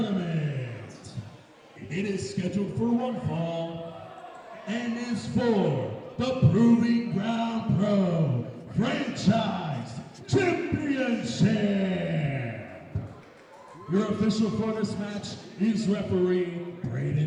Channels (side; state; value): both; identical; correlation 1.00